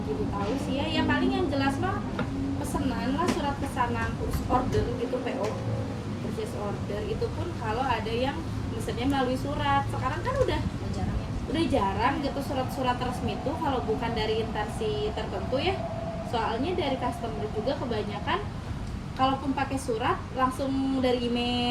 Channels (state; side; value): identical; both; correlation 1.00